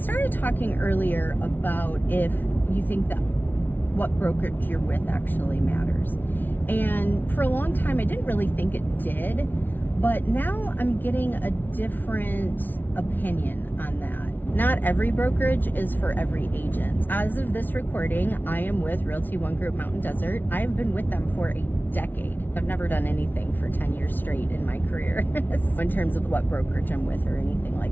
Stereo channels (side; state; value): right; late; 0.089 ms